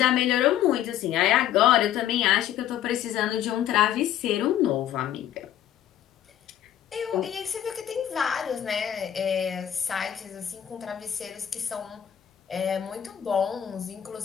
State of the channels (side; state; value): right; quieter; 10.9 dB